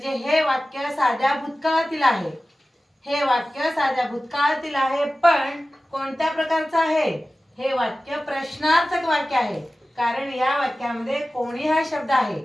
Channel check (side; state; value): both; normal; correlation 0.96